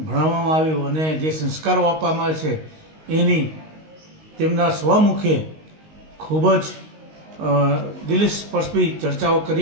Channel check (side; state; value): left; late; 19 ms